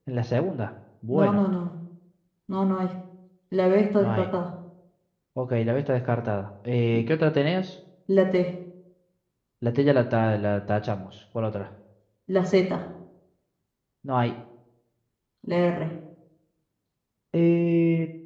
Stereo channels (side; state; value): both; identical; correlation 1.00